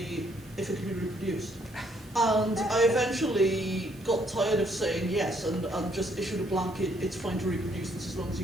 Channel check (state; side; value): noise; right; hiss, 27 dB below the sound